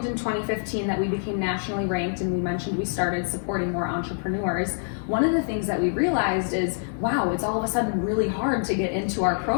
in 2015 that we became nationally ranked and we mentioned we started supporting more entrepreneurs, one of the things that we realized is, wow, it's all of a sudden really hard to get into our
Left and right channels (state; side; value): silent; right; digital silence